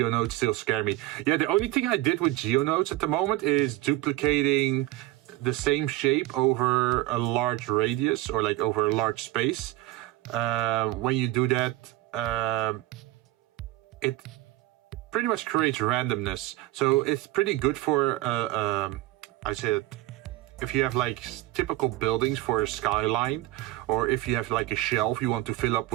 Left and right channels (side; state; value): left; quieter; 17.2 dB